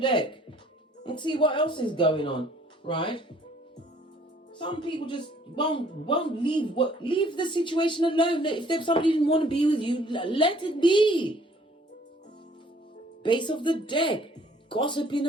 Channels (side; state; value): both; normal; correlation 0.58